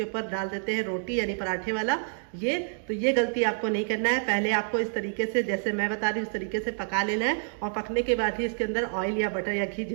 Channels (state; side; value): silent; left; digital silence